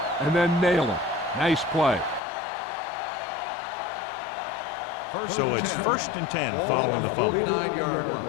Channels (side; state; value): right; drops out; at 2.2 s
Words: and then nail him. Nice play. So it's 1st and 10 following the fumble. 49-yard